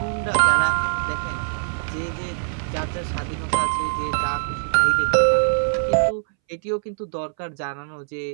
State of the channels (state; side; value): silent; left; 63 dB below the other